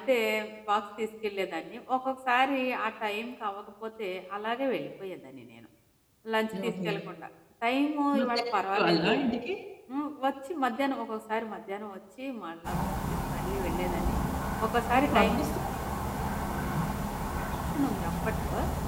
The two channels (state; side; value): identical; both; correlation 1.00